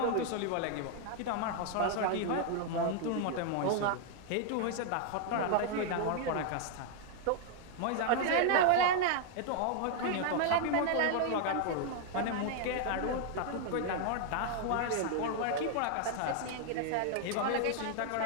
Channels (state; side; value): different; both; correlation 0.00